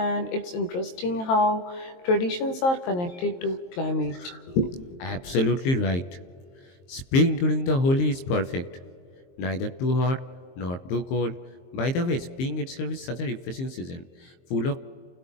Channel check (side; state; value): right; late; 23 ms